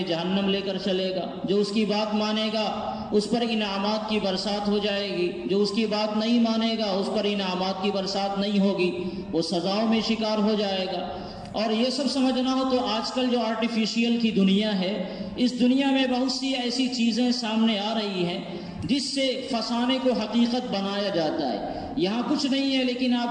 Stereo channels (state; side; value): identical; both; correlation 1.00